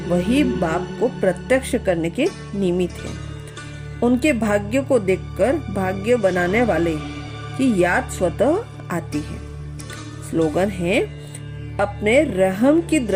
वही बाप को प्रत्यक्ष करने के निमित्त हैं। उनके भाग्य को देखकर भाग्य बनाने वाले की याद स्वतः आती है। स्लोगन है, अपने रहम की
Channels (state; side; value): identical; both; correlation 1.00